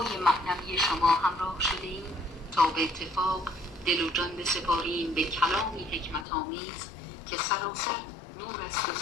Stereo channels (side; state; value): right; drops out; at 6.2 s